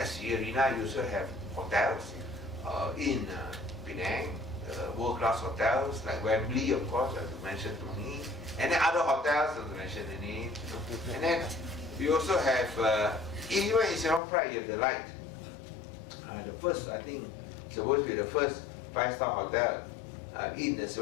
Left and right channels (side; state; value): right; drops out; at 14.2 s